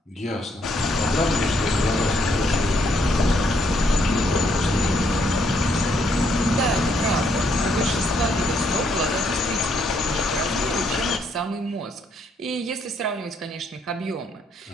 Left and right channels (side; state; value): both; normal; correlation 0.72